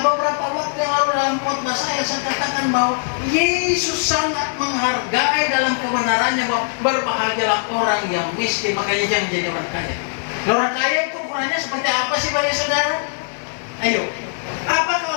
beberapa waktu yang lalu dalam khotbah saya katakan bahwa Yesus sangat menghargai dalam kebenarannya bahwa berbahagialah orang yang miskin, makanya jangan jadi orang kaya. Orang kaya itu ukurannya seperti apa sih bagi saudara? Ayo, apakah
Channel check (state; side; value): silent; right; 65 dB below the other